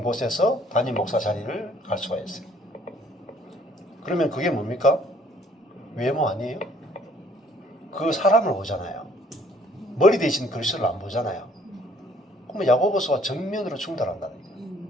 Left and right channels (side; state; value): both; normal; correlation 0.60